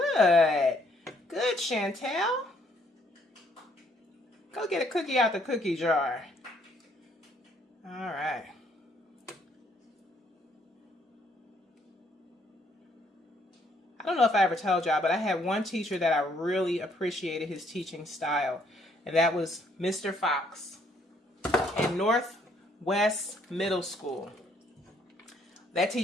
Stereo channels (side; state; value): both; normal; correlation 0.68